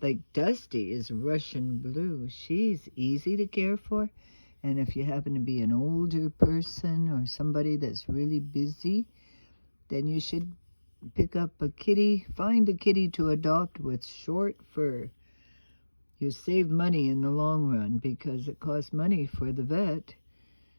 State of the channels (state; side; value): inverted; both; correlation -1.00